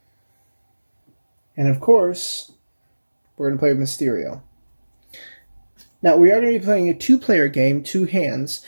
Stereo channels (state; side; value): inverted; both; correlation -1.00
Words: And of course, we're going to play with Mysterio. Now, we are going to be playing a 2-player game, 2 hands.